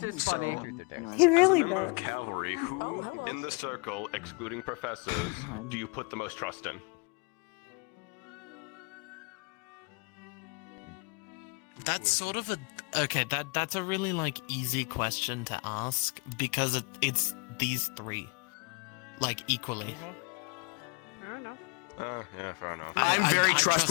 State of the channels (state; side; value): quieter; right; 31.5 dB